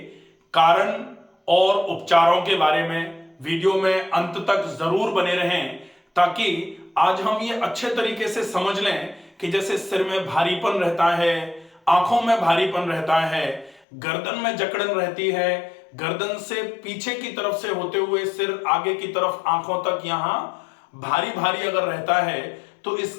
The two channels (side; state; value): right; drops out; at 13.8 s